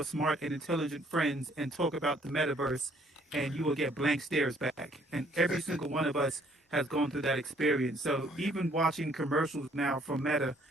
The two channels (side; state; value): both; normal; correlation 0.63